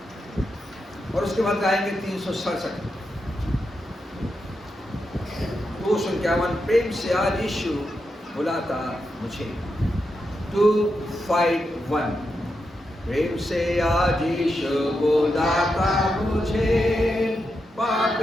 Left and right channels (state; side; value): normal; both; correlation 0.86